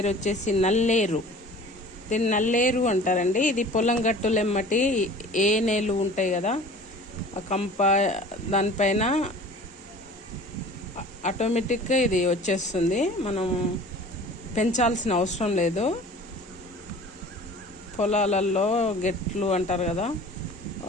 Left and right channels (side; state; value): both; normal; correlation 0.43